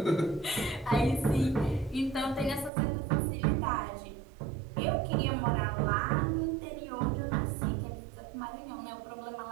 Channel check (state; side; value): drops out; left; at 2.7 s